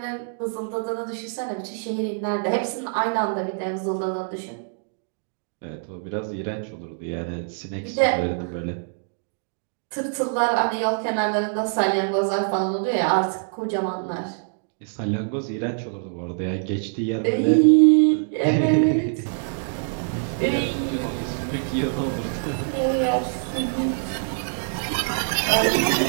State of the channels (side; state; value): left; silent; digital silence